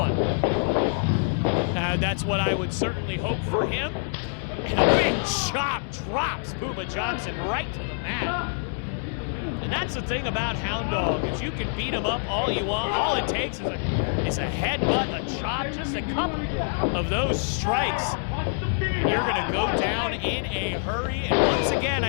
That's what I would certainly hope for him. And a big chop drops Puma Johnson right to the mat. And that's the thing about Hound Dog, is you can beat him up all you want. All it takes is a headbutt, a chop, just a couple of those strikes. And you're going to go down in a hurry. And once again,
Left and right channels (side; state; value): right; silent; 61 dB below the other